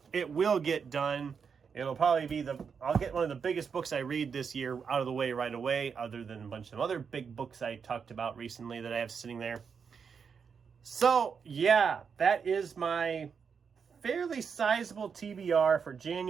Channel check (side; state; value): left; quieter; 6.3 dB